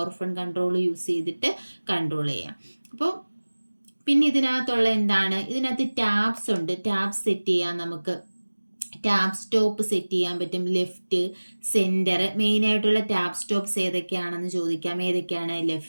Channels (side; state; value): both; inverted; correlation -1.00